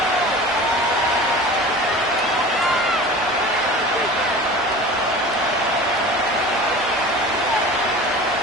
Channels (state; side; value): noise; right; rumble, 24 dB below the sound